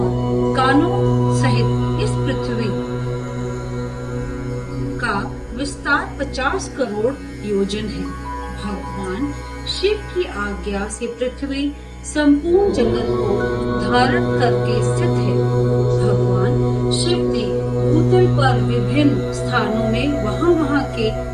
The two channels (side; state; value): both; identical; correlation 1.00